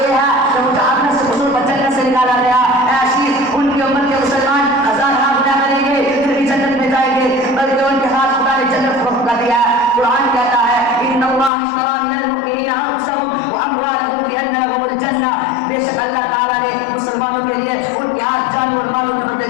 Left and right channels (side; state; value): right; drops out; at 11.5 s